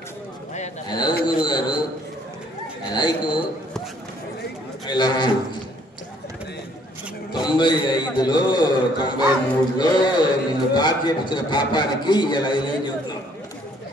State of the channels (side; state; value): both; normal; correlation 0.63